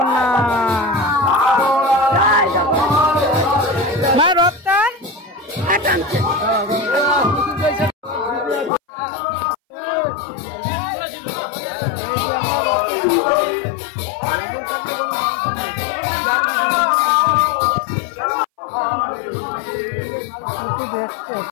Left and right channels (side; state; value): right; drops out; at 8.7 s